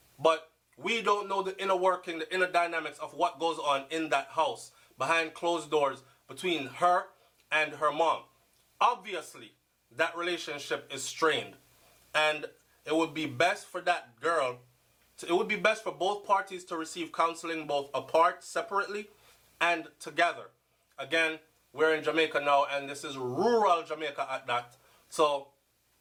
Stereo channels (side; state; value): both; identical; correlation 1.00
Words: But We don't know the inner working, the inner dynamics of what goes on in that house, behind closed doors, between her and her mom. Obviously, that relationship is strained. And it would be best for that girl, it would be best for both parties to receive counseling both apart, separately, and together. Again, we're in Jamaica now, and this is rural Jamaica at that. So